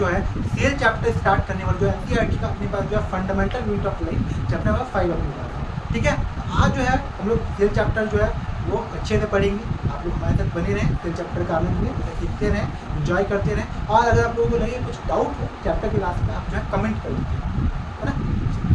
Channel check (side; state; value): both; identical; correlation 1.00